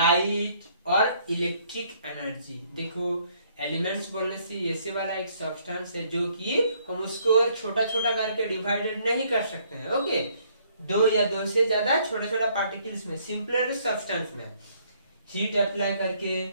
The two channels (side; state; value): both; inverted; correlation -0.65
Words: और इलेक्ट्रिक एनर्जी। देखो एलिमेंट्स बोलने से ऐसे वाला एक सब्सटेंस है जो कि हम उसको छोटा छोटा करके डिवाइडेड नहीं कर सकते हैं। ओके, दो या दो से ज्यादा छोटा छोटा पार्टिकल्स में, सिंपलर सब्सटेंस में हीट अप्लाई करके,